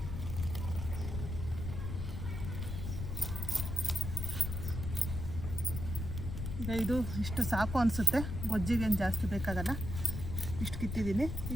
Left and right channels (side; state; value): left; noise; rumble, 4 dB below the sound